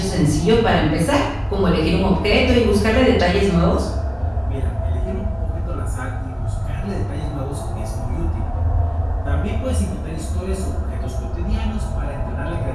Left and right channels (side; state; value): both; identical; correlation 1.00